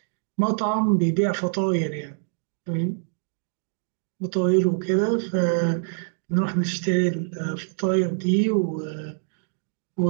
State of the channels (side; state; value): left; silent; digital silence